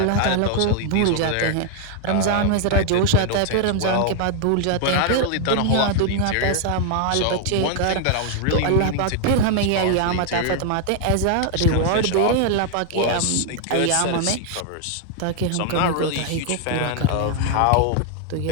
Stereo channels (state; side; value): different; both; correlation 0.00